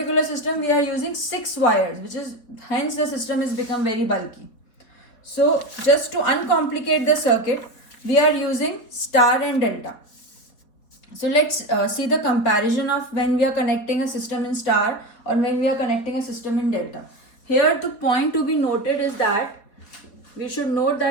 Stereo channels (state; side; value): late; right; 4.1 ms